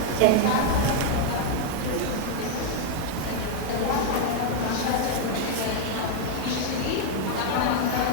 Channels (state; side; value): different; both; correlation 0.00